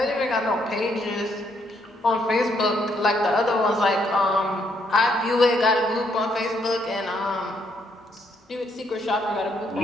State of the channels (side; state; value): both; normal; correlation 0.73